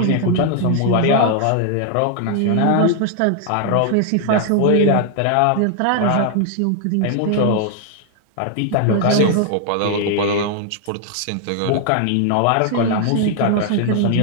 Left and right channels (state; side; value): different; both; correlation 0.00